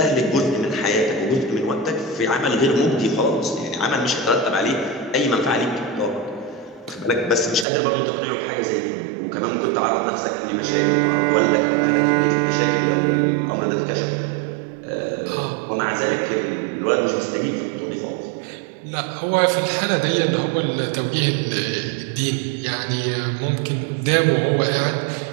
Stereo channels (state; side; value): drops out; left; at 7.7 s